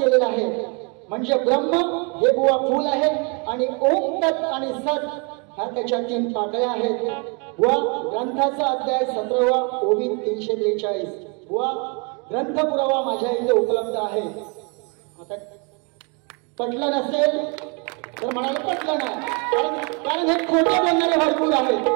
आहे. म्हणजे ब्रह्म हे बुवा फूल आहे आणि ओम तत् आणि सत ह्या त्याच्या 3 पाकळ्या आहेत. व ग्रंथाचा अध्याय 17वा ओवी 343 व ग्रंथ पुरावा माझ्या इथे उपलब्ध आहे. आता पटलं नसेल तर म्हणाले पटलं नाही, कारण हे खोटे बोलणारे भरपूर आहेत.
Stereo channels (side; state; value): left; quieter; 33.3 dB